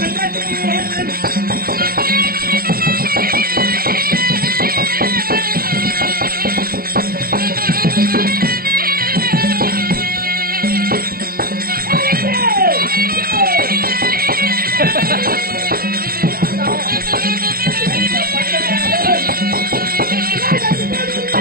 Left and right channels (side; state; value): left; late; 0.43 ms